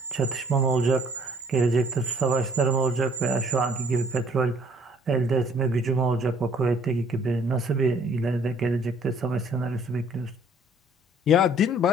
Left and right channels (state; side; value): normal; both; correlation 0.59